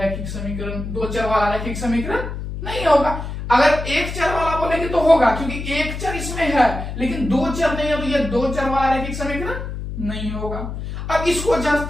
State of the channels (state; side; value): noise; left; hum, 7 dB below the sound